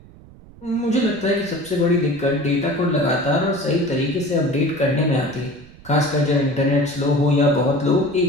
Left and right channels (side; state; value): right; noise; rumble, 21 dB below the sound